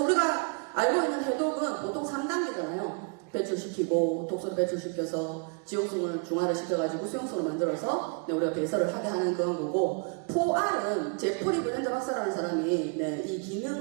우리가 알고 있는 해독은 보통 3단계잖아요. 배출시키고 독소를 배출시켜서 지용성을 중화를 시켜가지고 수용성을 만들어서 네, 우리가 배설을 하게 하는 그런 거고 4R은 제프리 브랜드 박사라는 사람이 네, 이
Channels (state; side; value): quieter; left; 37.2 dB